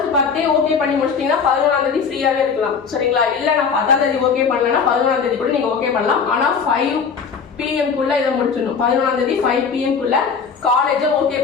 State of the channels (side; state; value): right; quieter; 5.9 dB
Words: 10 ஓகே பண்ணி முடிச்சிட்டீங்கன்னா 11ஆம் தேதி ஃப்ரீயாவே இருக்கலாம். சரிங்களா? இல்ல நான் 10ஆம் தேதி ஓகே பண்ணலன்னா 11ஆம் தேதி கூட நீங்க ஓகே பண்ணலாம். ஆனா 5 PM குள்ள இதை முடிச்சிடணும். 11ஆம் தேதி 5 PM குள்ள காலேஜை ஓகே